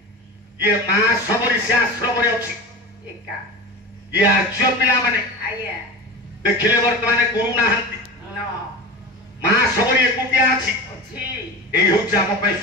ये मां सबरी से आश्रम रे अछि एका ये आज्य पिला माने आगे देखिले वर्तमान गुरु नाहंती नो मां सबरी एकुटिया अछि अछि एई होछ हम पे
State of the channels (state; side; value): normal; both; correlation 0.30